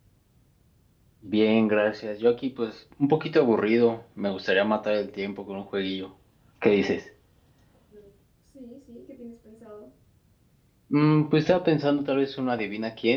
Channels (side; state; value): both; identical; correlation 1.00